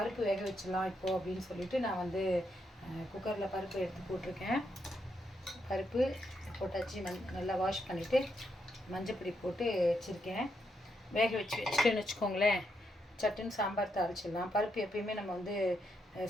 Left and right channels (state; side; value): normal; both; correlation 0.80